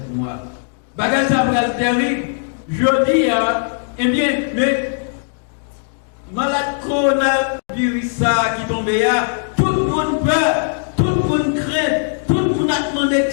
mois. Bagaille ça va être terrible, je dis, eh bien, mais malade coronavirus ça qui tombe là, tout le monde peur, tout le monde craint, tout le monde a demandé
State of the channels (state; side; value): silent; right; digital silence